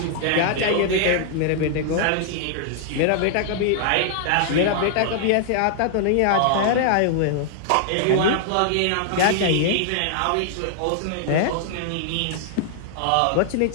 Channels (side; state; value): both; different; correlation -0.01